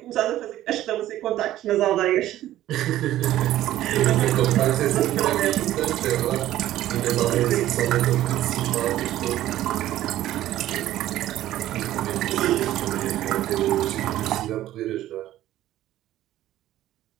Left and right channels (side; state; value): left; quieter; 13.8 dB